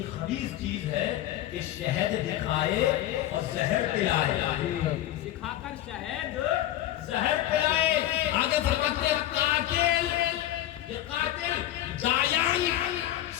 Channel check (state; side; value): quieter; right; 13.4 dB